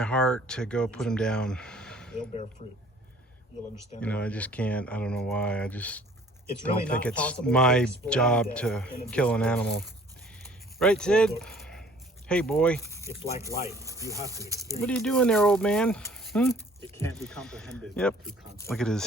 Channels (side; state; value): both; normal; correlation 0.54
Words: heart to go put him down. They'll bear fruit. You'll understand. You know, I just can't. I don't know why. I just It's don't really think not it's possible to my explain job death to in a kill an discourse. animal. Right, Sid? Look, Hey, boy. it's like life. You have to experience. What are you doing there, old man? It can't be comprehended. Yep. through concept.